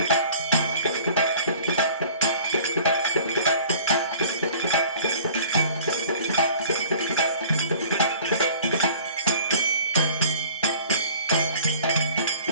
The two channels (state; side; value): inverted; both; correlation -0.48